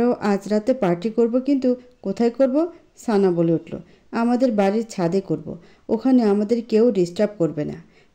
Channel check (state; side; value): identical; both; correlation 1.00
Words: আজ রাতে পার্টি করব, কিন্তু কোথায় করব? সানা বলে উঠল, আমাদের বাড়ির ছাদে করব, ওখানে আমাদের কেউ ডিস্টার্ব করবে না।